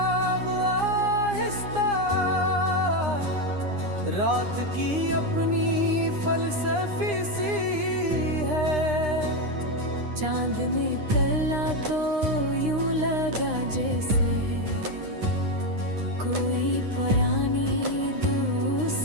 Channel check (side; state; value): left; late; 9.8 ms